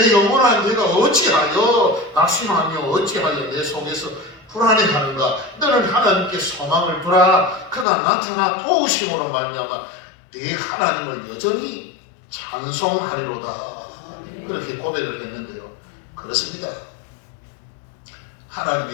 영혼아 내가 어찌하여 낙심하며 어찌하여 내 속에서 불안해하는가. 너는 하나님께 소망을 두라. 그가 나타나 도우심으로 말미암아 네 하나님을 여전히 찬송하리로다. 그렇게 고백을 했는데요. 그렇습니다. 하나님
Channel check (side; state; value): right; drops out; at 7.9 s